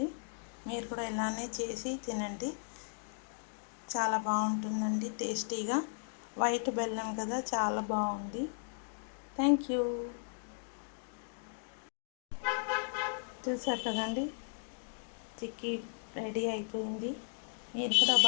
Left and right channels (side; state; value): right; silent; digital silence